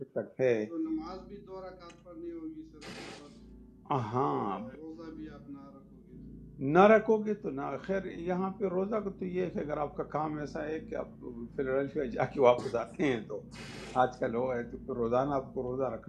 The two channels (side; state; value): both; identical; correlation 1.00